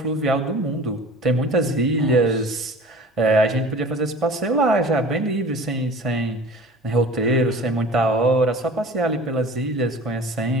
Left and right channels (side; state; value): both; normal; correlation 0.42